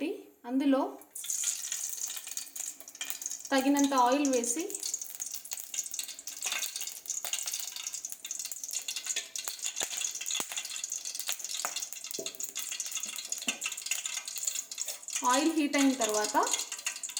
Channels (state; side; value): identical; both; correlation 1.00